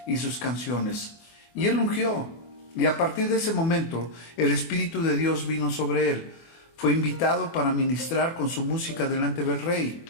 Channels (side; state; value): right; late; 24 ms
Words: y sus canciones. Y él ungió, y a partir de ese momento el Espíritu de Dios vino sobre él. Fue invitado para ministrar con su música delante del rey.